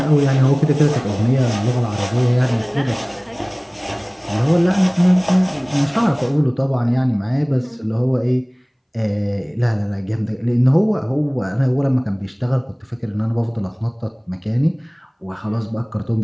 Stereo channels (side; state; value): both; identical; correlation 1.00